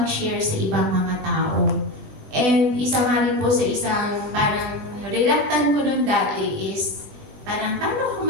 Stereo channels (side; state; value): left; late; 20 ms